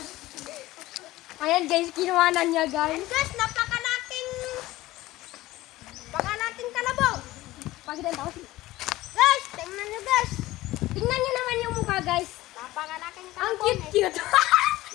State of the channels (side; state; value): right; quieter; 17.4 dB